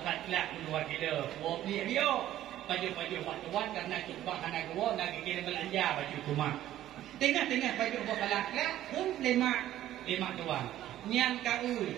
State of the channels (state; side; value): quieter; left; 13.1 dB